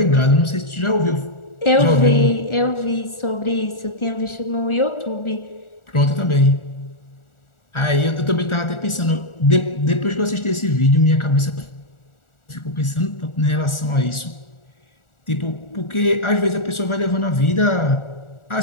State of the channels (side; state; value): right; late; 1.4 ms